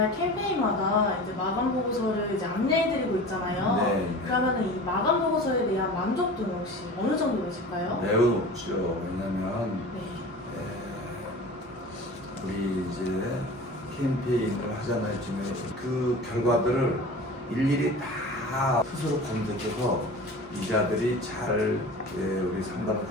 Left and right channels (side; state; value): both; normal; correlation 0.36